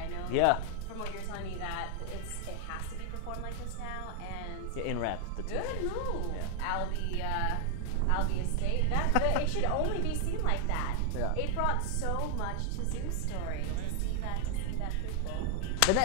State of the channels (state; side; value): different; both; correlation 0.00